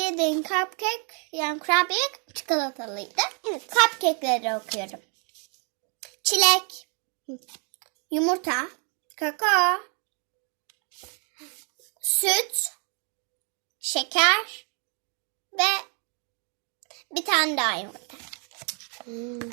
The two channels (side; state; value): left; quieter; 38.9 dB